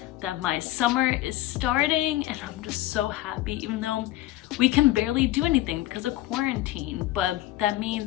that my summer is starting and I'm just so happy, even though we can barely do anything because of quarantine. But that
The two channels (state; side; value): quieter; right; 16.1 dB